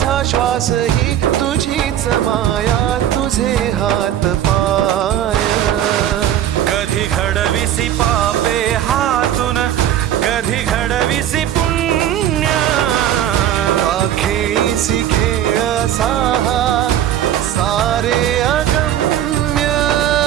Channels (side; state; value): left; quieter; 11.1 dB